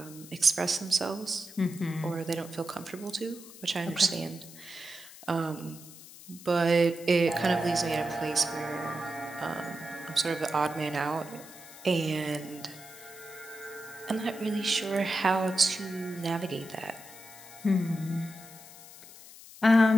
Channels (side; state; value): left; noise; hiss, 17 dB below the sound